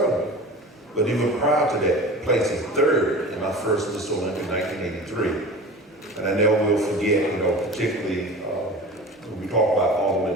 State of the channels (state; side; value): normal; both; correlation 0.36